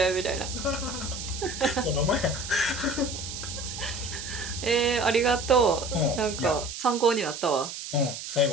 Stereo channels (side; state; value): right; noise; hiss, 8 dB below the sound